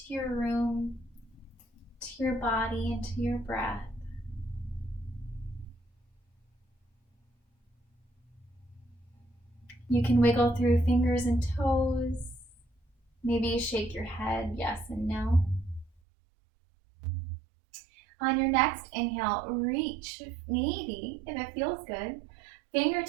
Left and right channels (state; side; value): drops out; left; at 15.9 s